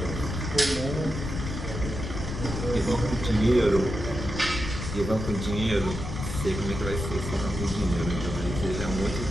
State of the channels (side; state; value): left; noise; rumble, 5 dB below the sound